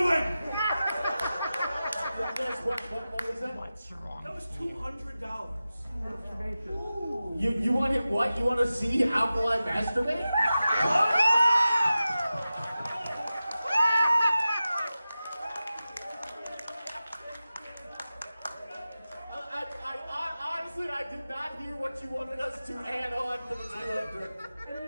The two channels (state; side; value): inverted; both; correlation -0.94